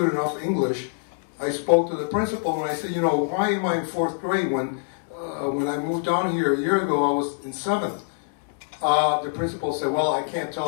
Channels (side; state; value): right; silent; 62 dB below the other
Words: enough English, I spoke to the principal and I said, you know, why am I in fourth grade when I moved down here a year ago, I was in seventh? The principal said, well, I can't